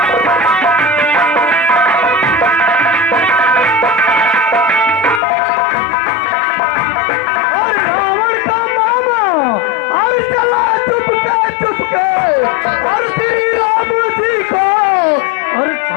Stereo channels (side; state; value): right; drops out; at 5.2 s